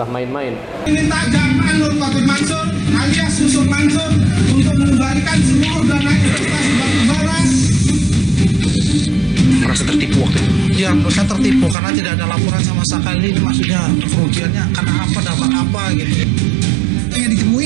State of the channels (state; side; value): drops out; left; at 11.8 s